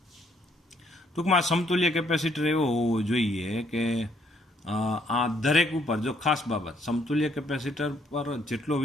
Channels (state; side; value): normal; both; correlation 0.69